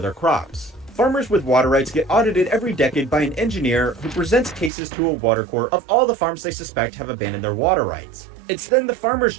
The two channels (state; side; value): drops out; left; at 4.7 s